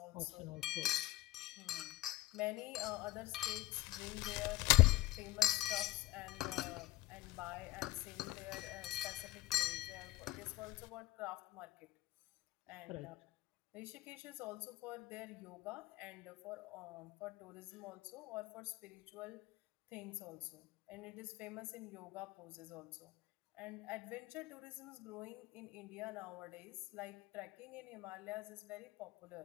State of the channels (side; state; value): right; quieter; 17.4 dB